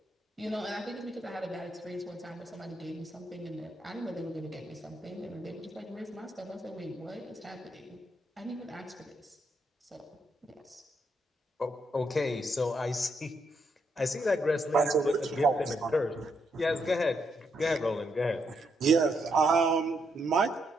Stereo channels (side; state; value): both; normal; correlation 0.78